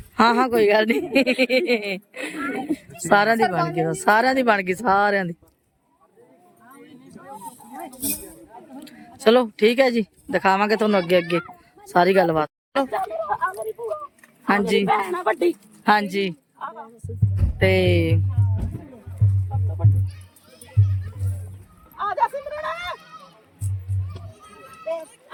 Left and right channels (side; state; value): both; identical; correlation 1.00